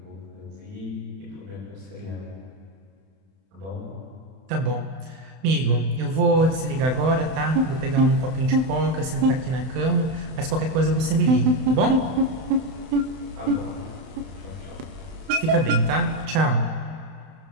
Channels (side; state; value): left; late; 31 ms